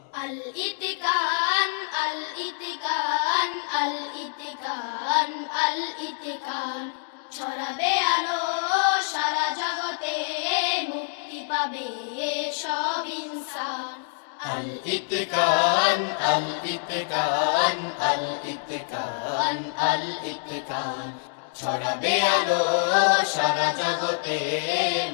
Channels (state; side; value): silent; right; digital silence